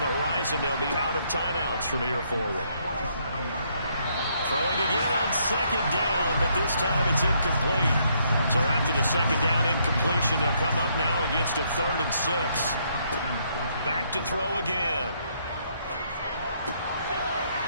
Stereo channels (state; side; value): inverted; both; correlation -0.71